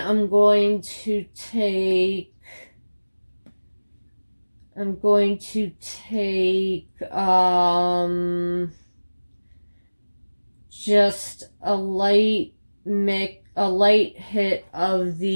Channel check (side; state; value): both; inverted; correlation -1.00